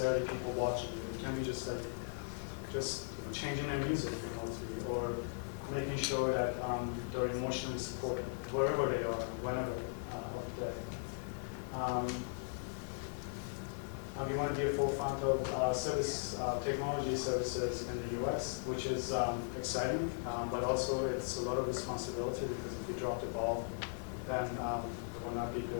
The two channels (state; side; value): silent; right; digital silence